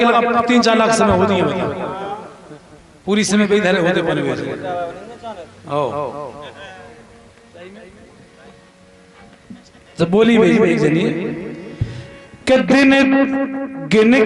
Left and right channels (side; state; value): both; identical; correlation 1.00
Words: लगा 3-4 लाख समय होती है, पूरी समय पे इधर होते बने हुए। तो बोली भाई जनी के दिन गिन